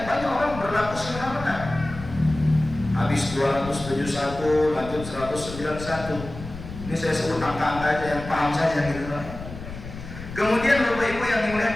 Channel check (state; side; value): noise; left; rumble, 12 dB below the sound